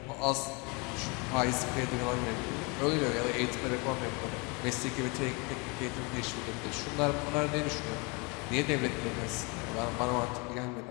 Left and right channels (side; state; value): right; quieter; 30.1 dB